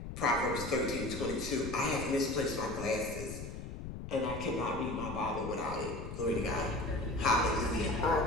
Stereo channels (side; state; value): left; noise; rumble, 9 dB below the sound